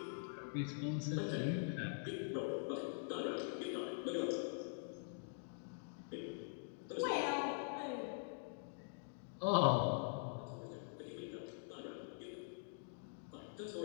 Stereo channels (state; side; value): silent; right; digital silence